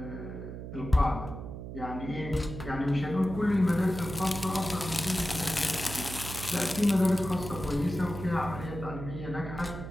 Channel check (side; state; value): right; noise; hum, 9 dB below the sound